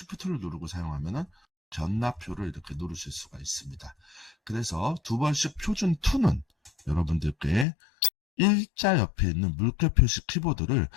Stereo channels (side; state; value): right; drops out; at 7.7 s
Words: 누르고 사용하면은 견나표를 이렇게 누르실 수가 있습니다. 그래서 두 번씩 표준 2는 여러분들께 일자 옆에 있는 물결 표시 키보드를